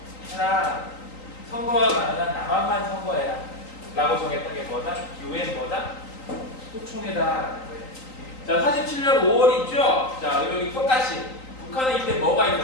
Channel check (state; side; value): late; right; 3.9 ms